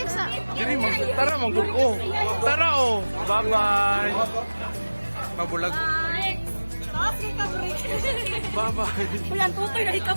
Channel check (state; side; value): inverted; both; correlation -1.00